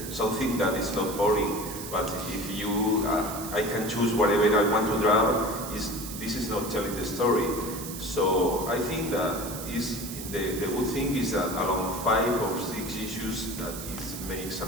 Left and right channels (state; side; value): noise; right; hiss, 10 dB below the sound